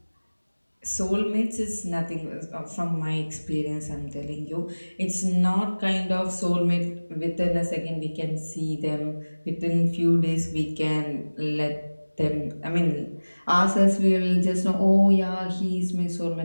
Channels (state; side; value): inverted; both; correlation -1.00